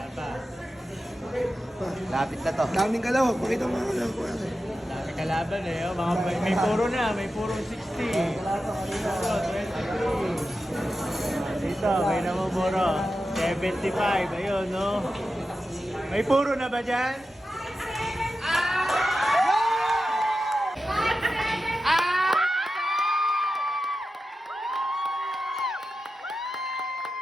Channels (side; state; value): both; normal; correlation 0.91